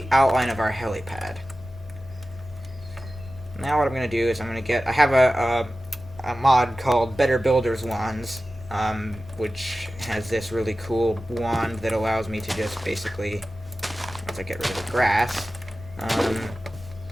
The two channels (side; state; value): both; normal; correlation 0.94